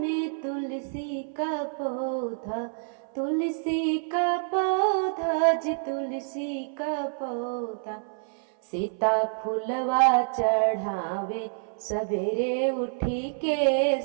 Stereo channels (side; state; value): left; silent; 56 dB below the other